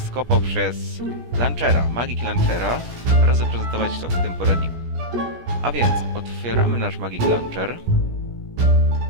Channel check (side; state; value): left; late; 17 ms